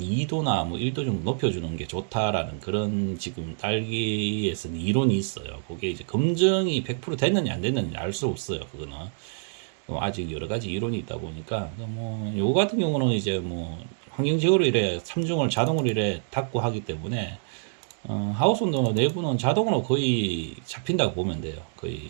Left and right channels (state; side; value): silent; left; digital silence